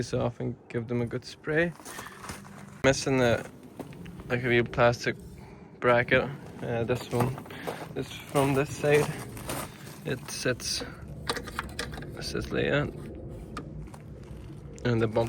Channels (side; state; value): both; identical; correlation 1.00